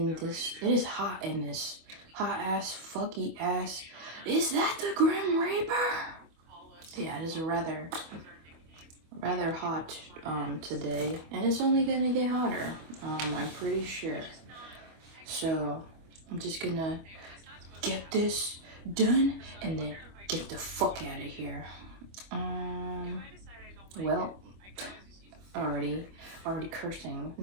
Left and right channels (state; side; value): late; left; 25 ms